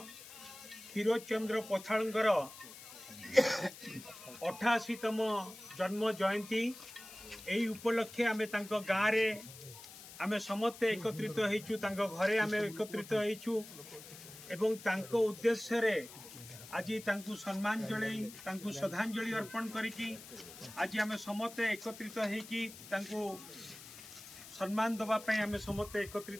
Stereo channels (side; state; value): left; noise; hiss, 16 dB below the sound